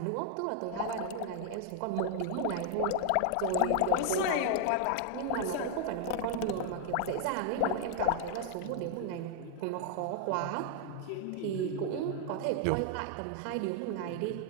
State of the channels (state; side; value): different; both; correlation 0.00